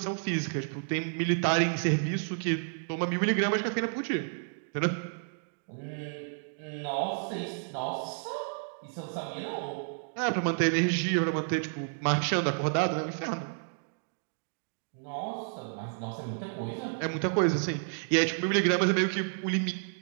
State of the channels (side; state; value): left; silent; digital silence